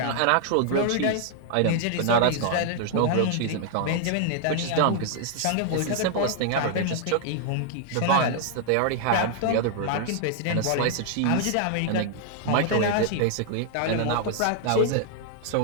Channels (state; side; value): different; both; correlation 0.00